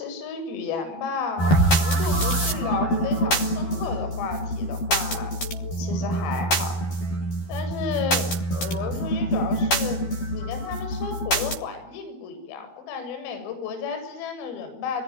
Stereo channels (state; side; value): late; right; 12 ms